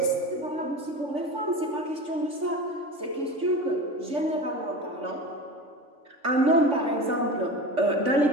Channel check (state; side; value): late; left; 3.5 ms